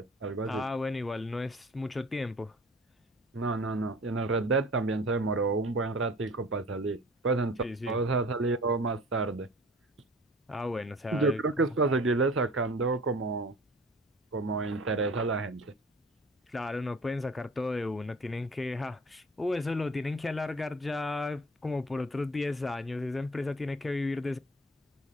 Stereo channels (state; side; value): normal; both; correlation 0.44